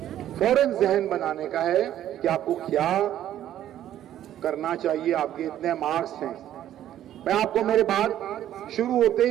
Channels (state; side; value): quieter; left; 11.8 dB